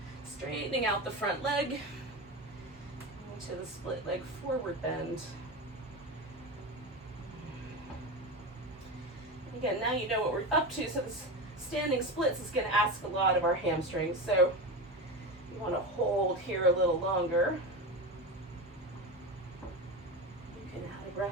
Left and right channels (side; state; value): both; normal; correlation 0.22